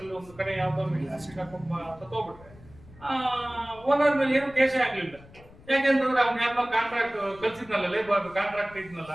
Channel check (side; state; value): left; noise; rumble, 22 dB below the sound